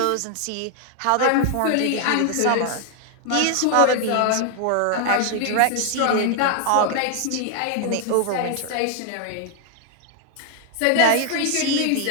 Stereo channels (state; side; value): different; both; correlation 0.00